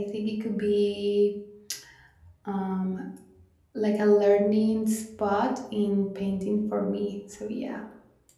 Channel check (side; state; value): both; identical; correlation 1.00